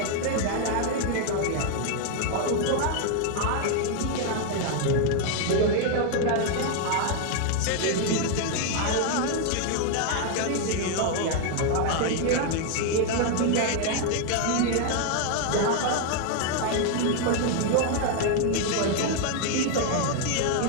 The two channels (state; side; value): different; both; correlation 0.00